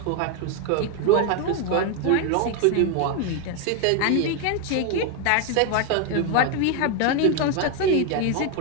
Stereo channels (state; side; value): different; both; correlation 0.01